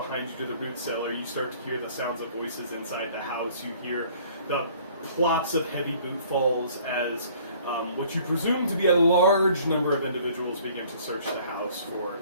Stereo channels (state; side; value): inverted; both; correlation -0.55